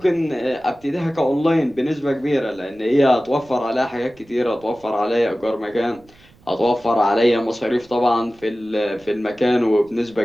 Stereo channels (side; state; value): right; noise; rumble, 28 dB below the sound